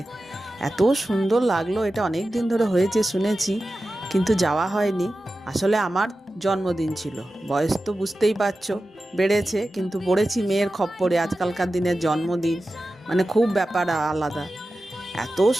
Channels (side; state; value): both; normal; correlation 0.94